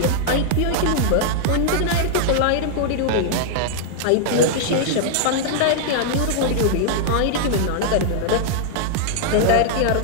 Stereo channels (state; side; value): different; both; correlation -0.01